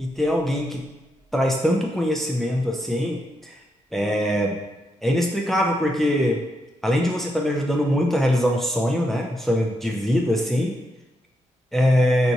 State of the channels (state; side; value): normal; both; correlation 0.82